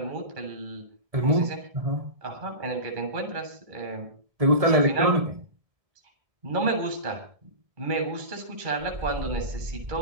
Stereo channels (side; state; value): left; late; 1.6 ms